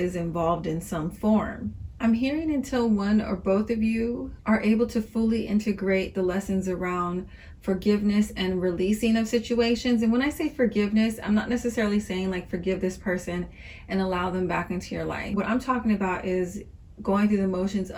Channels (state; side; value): identical; both; correlation 1.00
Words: involved in some form. I'm hearing until one or both of you are able to fully integrate the lessons around forgiveness and releasing of situations. And when I say forgiveness, I'm not necessarily saying like forgive this person and allow them back into your life. What I'm talking about is going through the motions